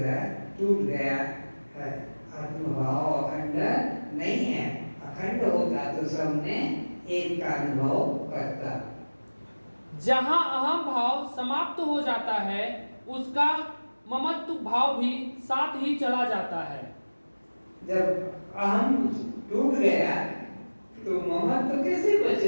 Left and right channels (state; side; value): inverted; both; correlation -1.00